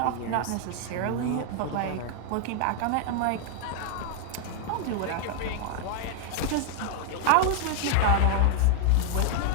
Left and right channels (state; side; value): different; both; correlation 0.00